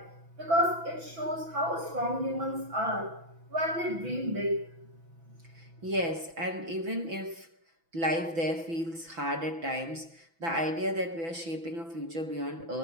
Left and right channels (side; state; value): left; late; 6.0 ms